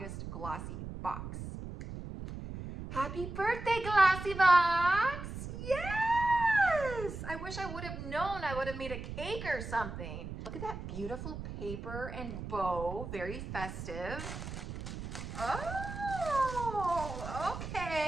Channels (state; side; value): noise; right; rumble, 8 dB below the sound